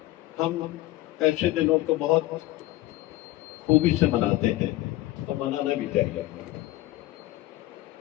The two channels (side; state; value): right; quieter; 16.9 dB